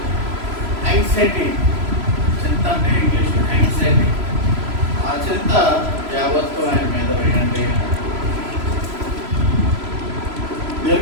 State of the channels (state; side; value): late; left; 3.0 ms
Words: యాంగ్జైటీ, చింత అంటే ఇంగ్లీష్ యాంగ్జైటీ, ఆ చింత యావత్తు ఆయన మీద వేయండి.